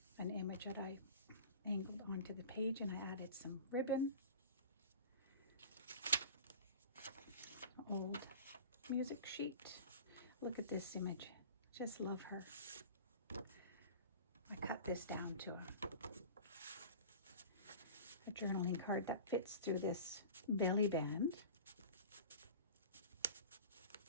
an image that I angled onto the page, and I added some ribbon. Old music sheet. Look at this image. Just love her. I cut this down to a journaling card that fits through this belly band.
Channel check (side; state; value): both; inverted; correlation -0.38